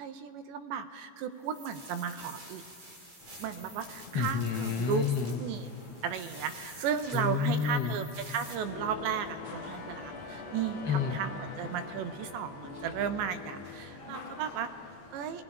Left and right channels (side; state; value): left; late; 14 ms